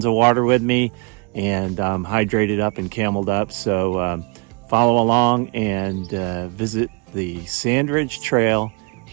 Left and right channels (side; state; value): left; quieter; 30.9 dB